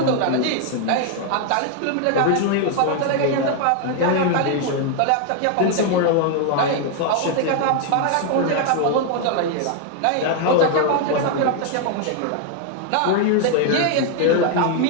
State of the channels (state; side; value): different; both; correlation 0.00